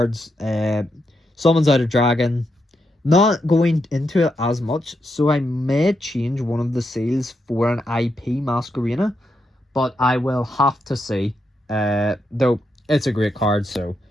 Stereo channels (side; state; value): both; normal; correlation 0.83